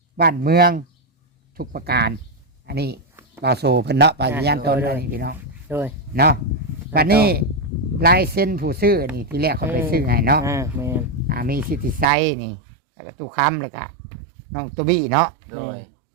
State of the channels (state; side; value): drops out; left; at 12.1 s